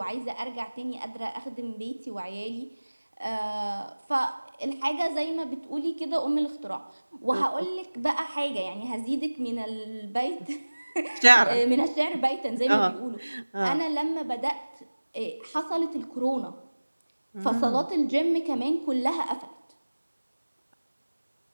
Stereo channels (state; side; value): inverted; both; correlation -1.00